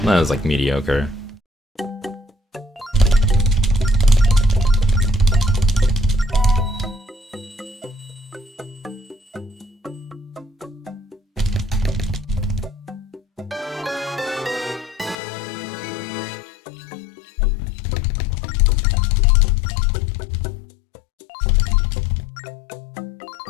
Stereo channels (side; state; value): right; drops out; at 15.2 s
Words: That was like mediocre.